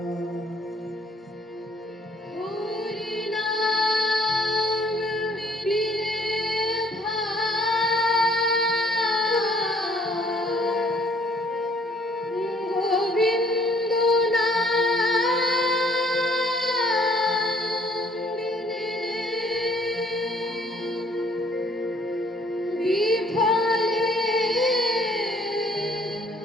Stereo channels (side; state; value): both; normal; correlation 0.61